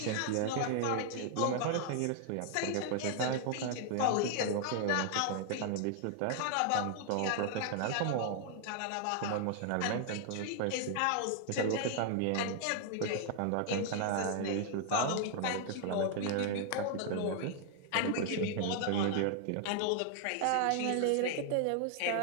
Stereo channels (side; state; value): both; different; correlation 0.00